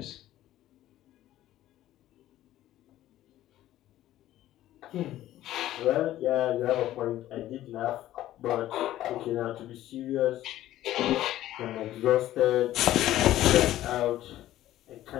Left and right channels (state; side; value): quieter; right; 14.0 dB